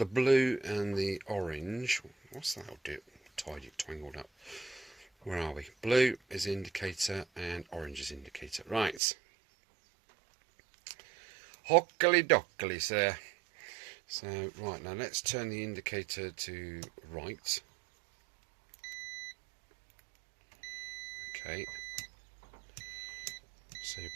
blue and the orange. What's that? I'll do it tangled up. Where are we? Blue is indicator and orange is indicator. Right. Hockily dockily, sir. So, right, now let's turn the indicator to right. Okay. So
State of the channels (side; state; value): left; drops out; at 9.0 s